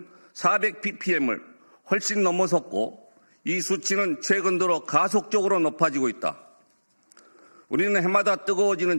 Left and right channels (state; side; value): inverted; both; correlation -1.00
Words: 400 ppm을 훨씬 넘어섰고 이 수치는 최근 들어 가속적으로 높아지고 있다. 우리는 해마다